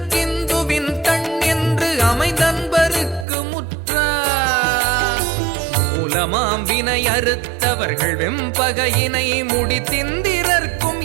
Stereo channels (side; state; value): left; drops out; at 3.2 s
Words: கண் என்று அமைந்தன்பருக்கு முற்ற மூலமாம் வினை அறுத்தவர்கள் வெம்பகையினை முடித்திந்திரர்க்கும்